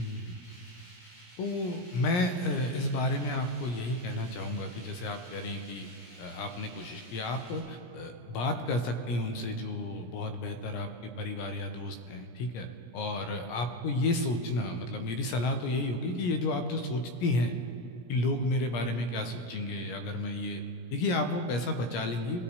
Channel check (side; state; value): right; late; 17 ms